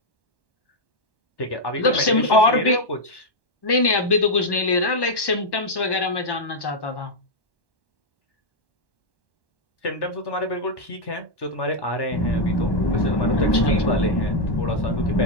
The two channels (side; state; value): right; late; 1.1 ms